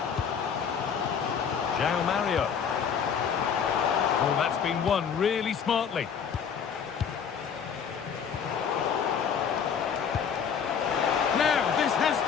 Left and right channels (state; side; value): quieter; right; 7.2 dB